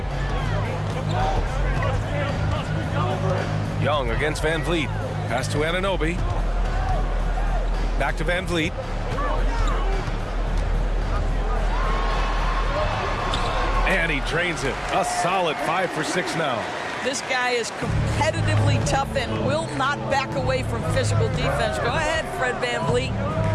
Young against Van Vliet. Pass to Anunoby. Back to Van Vliet. And he drains it. A solid 5 for 6 now. This guy is competitively tough and will not back away from physical defense. Go ahead, Fred Van Vliet.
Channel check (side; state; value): both; identical; correlation 1.00